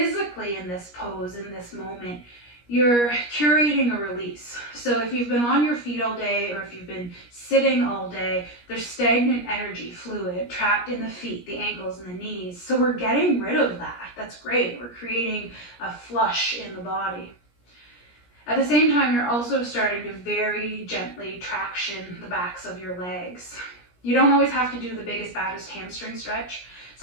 in this pose, in this moment, you're curating a release. So if you've been on your feet all day or if you've been sitting all day, there's stagnant energy, fluid, trapped in the feet, the ankles, and the knees. So we're getting rid of that. That's great. We're creating a flush in the body. At the same time, you're also starting to very gently traction the backs of your legs. You don't always have to do the biggest, baddest hamstring stretch.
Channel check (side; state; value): right; late; 17 ms